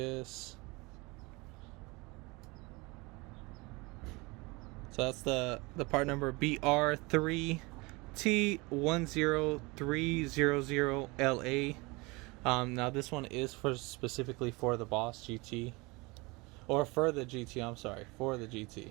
So that's the part number BR3T10300LA. Now this one is specifically for the Boss GT. Or for the GT, I'm sorry, for the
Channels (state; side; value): quieter; left; 25.3 dB